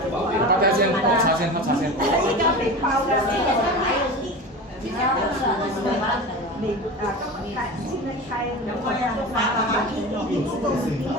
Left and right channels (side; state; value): both; normal; correlation 0.30